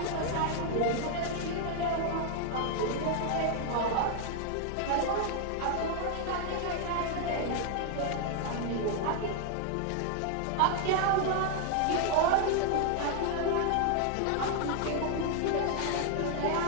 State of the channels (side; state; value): both; different; correlation 0.00